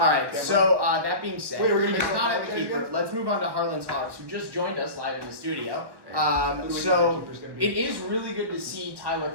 right, Cameron? so that being said, Wait, we're gonna he's do not at a the keeper. again? Let's move on to Harlan's Hogs, who just joined us live in the studio. Who do we think our So keeper's gonna be? it is really good to see Tyler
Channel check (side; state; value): left; late; 1.1 ms